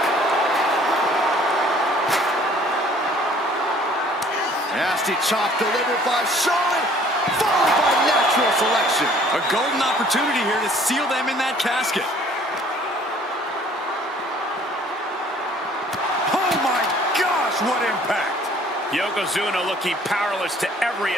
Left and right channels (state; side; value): normal; both; correlation 0.56